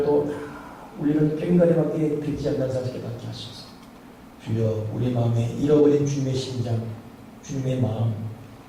우리는 꽹과리밖에 듣지 않는 사실을 깨닫게 하소서. 주여 우리 마음에 잃어버린 주님의 심장, 주님의 마음,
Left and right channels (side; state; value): both; identical; correlation 1.00